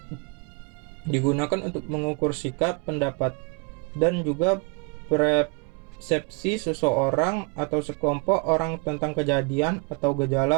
digunakan untuk mengukur sikap, pendapat, dan juga persepsi seseorang atau sekelompok orang tentang kejadian atau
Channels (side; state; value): left; quieter; 31.0 dB